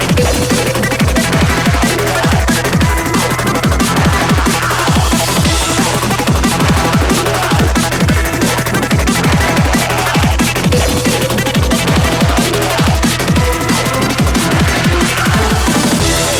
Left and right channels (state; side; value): identical; both; correlation 1.00